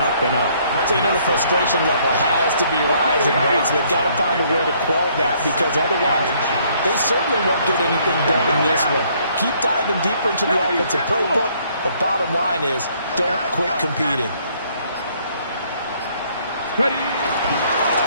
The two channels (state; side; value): inverted; both; correlation -0.65